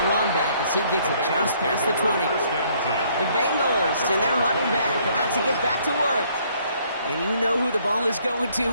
run back as he gets it just past the 20. The Bengals and their running back about to get back to work. And you know who the ball is going to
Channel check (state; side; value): inverted; both; correlation -0.64